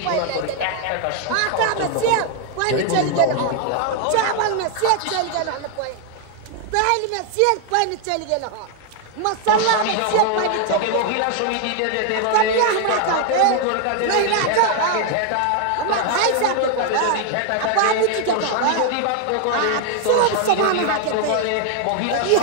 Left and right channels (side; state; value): both; different; correlation 0.00